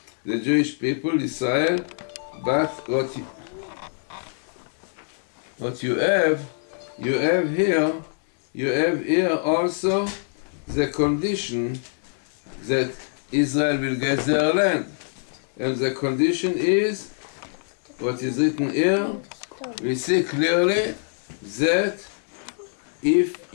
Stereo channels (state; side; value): silent; right; digital silence